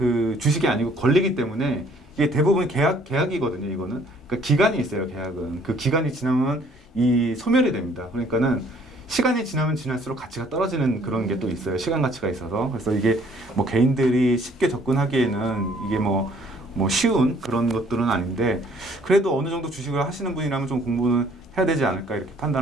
주식이 아니고 권리기 때문에 이게 대부분 계약이거든요. 이거는 그러니까 기간이 있어요. 계약은 그 기간이 지나면 이 소멸이 됩니다. 그러니까는 시간이 지나면 지날수록 가치가 떨어지는 그런 게 또 있어요. 시간 가치가 있어서. 그래서 이게 뭐 개인들이 쉽게 접근하기에는 이게 뭐 쉬운 그런 것들은 아닌데, 그래도 어느 정도 주식을 하시는 분이라면 좀 공부는 해야 되지 않을까 이렇게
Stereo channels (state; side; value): normal; both; correlation 0.60